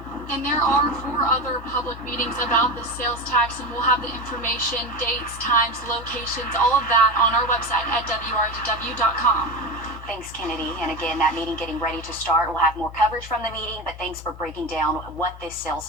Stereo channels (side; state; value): both; normal; correlation 0.22